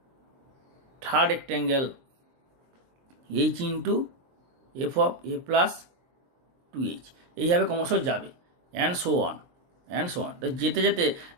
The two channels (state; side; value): late; left; 23 ms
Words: third rectangle h into f of a plus two h. এইভাবে ক্রমশ যাবে অ্যান্ড সো অন। তো যেতে যেতে